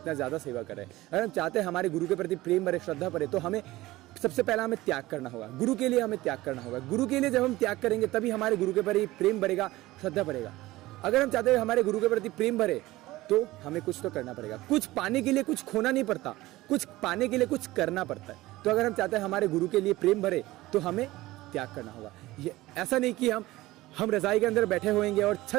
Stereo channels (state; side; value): quieter; left; 18.1 dB